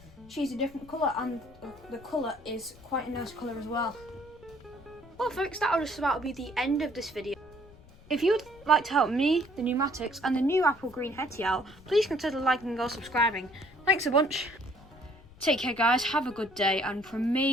she's a different colour and the colour is quite a nice colour as well. Well, folks, that'll just about be the end of this video. If you would like to help me, the Numatics, and the new apple green Hetty out, please consider liking or subscribing. Thanks a bunch. Take care, guys. Have a good day. And from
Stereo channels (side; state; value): left; noise; rumble, 23 dB below the sound